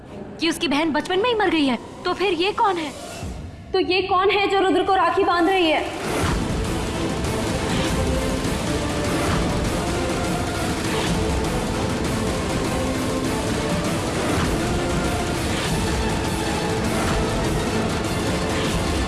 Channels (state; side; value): identical; both; correlation 1.00